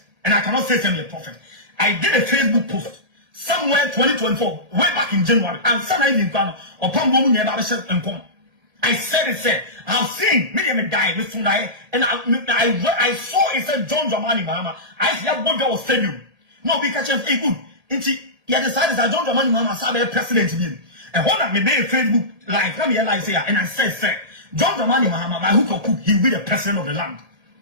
And I cannot say I'm a prophet. I did a Facebook post somewhere 2024, way back in January. And sometimes in Ghana, upon woman never and come. I said I've seen me die with Sunday, and I saw it said John Dramani Mahama. I see a boy was stadium. No, because hey good. You decided that John Dramani Mahama said a president to be. And when I made a Facebook live, let me realize here, and I said, John Dramani Mahama, by hook or crook, he'll be the president of the land.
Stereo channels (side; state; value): left; late; 1.8 ms